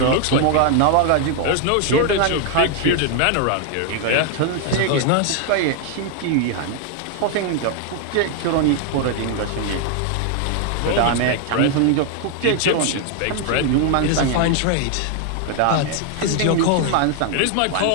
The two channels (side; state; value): both; different; correlation 0.00